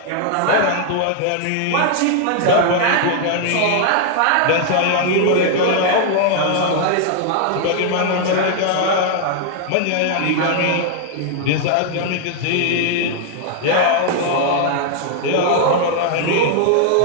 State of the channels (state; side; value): different; both; correlation 0.00